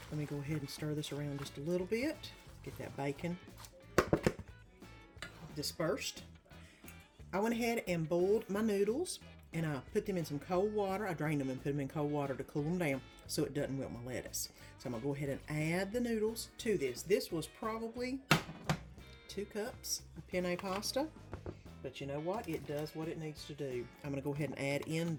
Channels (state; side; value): identical; both; correlation 1.00